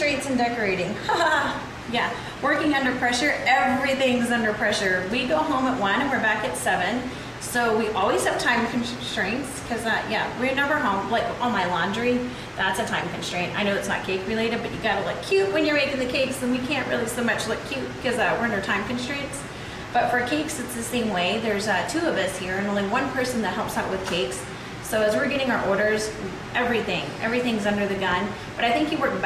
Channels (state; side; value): identical; both; correlation 1.00